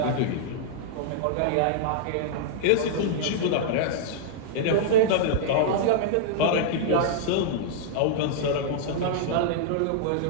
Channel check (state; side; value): different; both; correlation -0.01